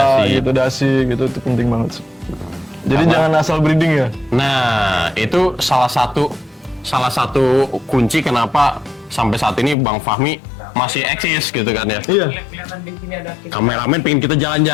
dasi. dasi gitu itu penting banget sih. Jadi Apa? jangan asal breeding ya. Nah, itu salah satu kunci kenapa sampai saat ini Bang Fahmi masih eksis gitu kan ya. Iya. Kelihatan di sini ada. Kameramen pengen kita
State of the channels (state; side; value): drops out; right; at 9.8 s